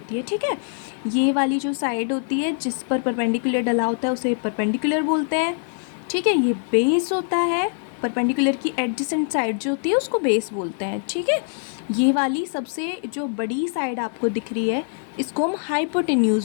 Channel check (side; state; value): right; silent; 62 dB below the other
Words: है, ठीक है। ये वाली जो साइड होती है जिस पर परपेंडिकुलर डला होता है उसे परपेंडिकुलर बोलते हैं, ठीक है। ये बेस होता है, परपेंडिकुलर की एडजेसेंट साइड जो होती है उसको बेस बोलते हैं, ठीक है। ये वाली सबसे जो बड़ी साइड आपको दिख रही है इसको हम